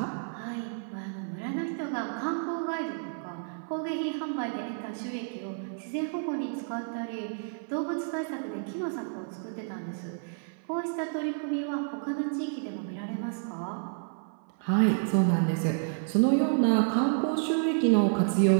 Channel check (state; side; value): silent; left; 55 dB below the other